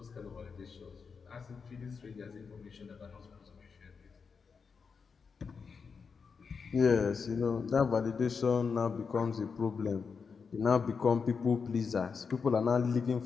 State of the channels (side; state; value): right; quieter; 5.5 dB